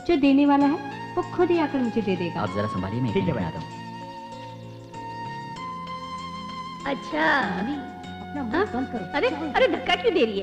जो देने वाला है, वो खुद ही आकर मुझे दे देगा। आप जरा संभालिए, मैं ठीक है बना दूँ। अच्छा, अपना मुंह बंद करो। अरे धक्का क्यों दे रही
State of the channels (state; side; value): identical; both; correlation 1.00